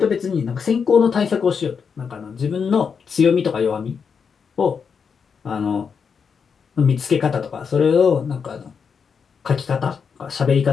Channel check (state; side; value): quieter; right; 6.2 dB